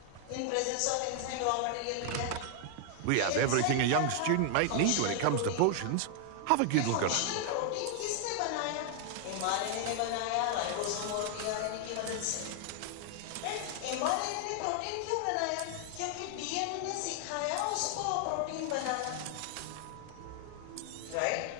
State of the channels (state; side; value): different; both; correlation 0.00